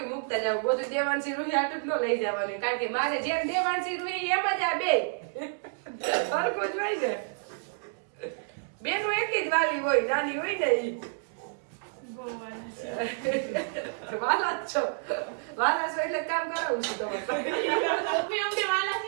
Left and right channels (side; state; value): left; silent; digital silence